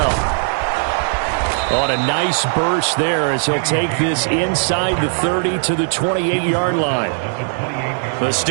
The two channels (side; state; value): left; silent; digital silence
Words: On a nice burst there as he'll take this inside the 30 to the 28-yard line. The